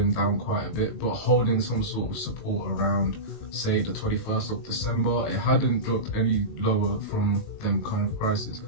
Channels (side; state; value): right; late; 19 ms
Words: down quite a bit, but holding some sort of support around, say, the 21st of December. It hadn't dropped any lower from them kind of prices.